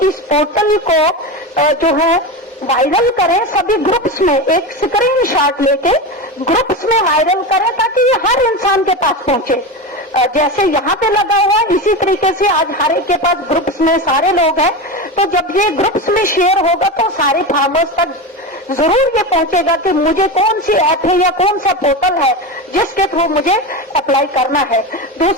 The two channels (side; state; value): both; normal; correlation 0.21